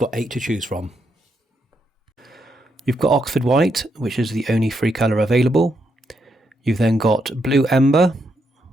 8 to choose from. You've got Oxford White, which is the only free colour available. You've then got Blue Ember,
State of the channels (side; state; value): both; normal; correlation 0.80